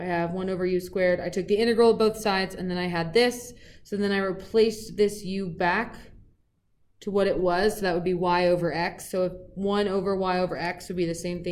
have 1 over u squared. I took the integral of both sides, and then I had this. So then I replaced this u back to what it was. So that would be y over x. So if 1 over y over x would be the same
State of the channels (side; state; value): both; identical; correlation 1.00